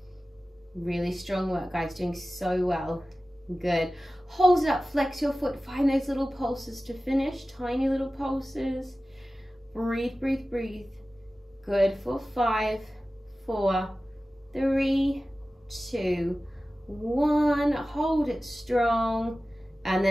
Really strong work, guys. Doing so well. Good. Hold it up. Flex your foot. Find those little pulses to finish. Tiny little pulses. Breathe, breathe, breathe. Good. For 5, 4, 3, 2, 1. Hold it strong. And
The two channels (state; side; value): normal; both; correlation 0.96